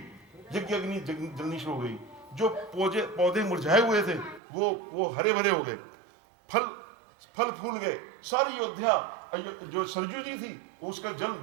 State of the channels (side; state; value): left; drops out; at 4.4 s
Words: यज्ञ अग्नि जलनी शुरू हो गई, जो पौधे मुरझाए हुए थे वो हरे भरे हो गए, फल फूल गए, सारी अयोध्या जो सरजू जी थी उसका जल